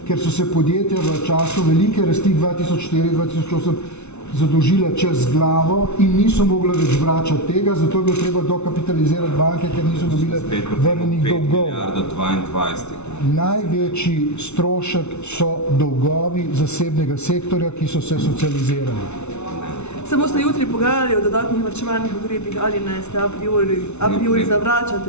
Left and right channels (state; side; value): late; right; 0.81 ms